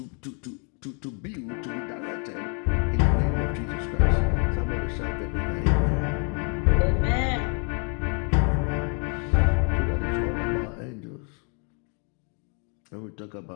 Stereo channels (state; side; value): quieter; right; 38.2 dB